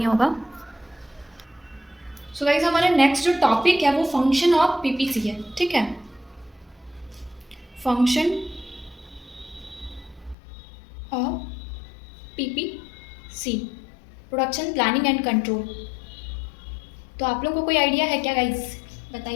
होगा। सो गाइस हमारा नेक्स्ट जो टॉपिक है वो फंक्शन ऑफ पीपीसी है, ठीक है। Function of PPC, production planning and control. तो आप लोगों को कोई आइडिया है क्या गाइस,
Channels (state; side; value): drops out; right; at 10.4 s